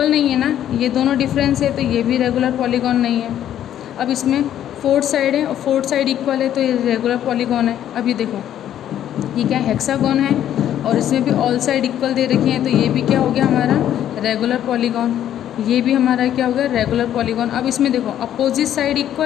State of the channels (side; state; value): right; quieter; 11.0 dB